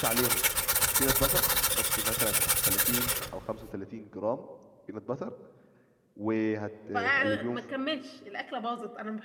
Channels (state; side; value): identical; both; correlation 1.00